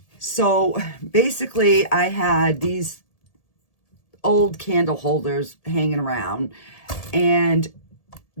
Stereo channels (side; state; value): right; late; 1.7 ms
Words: So basically I had these old candle holders hanging around and